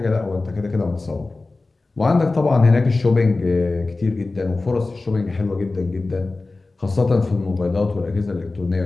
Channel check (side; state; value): right; quieter; 3.4 dB